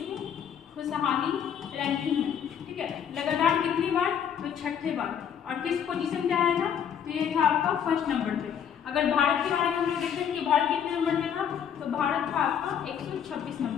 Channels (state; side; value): quieter; right; 8.4 dB